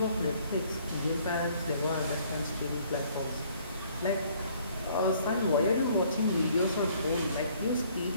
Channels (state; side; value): inverted; both; correlation -0.61